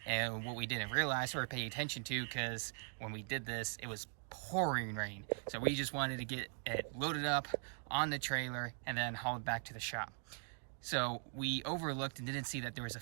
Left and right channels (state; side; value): silent; left; 51 dB below the other